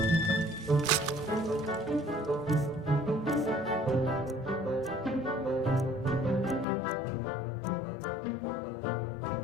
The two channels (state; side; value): drops out; right; at 6.7 s